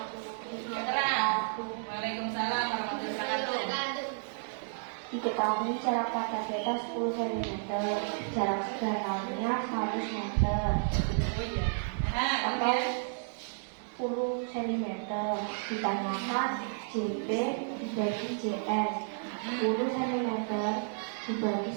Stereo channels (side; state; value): left; silent; digital silence